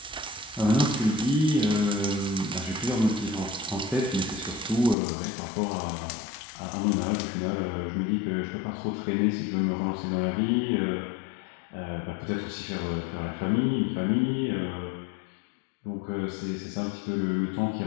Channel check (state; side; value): drops out; right; at 5.0 s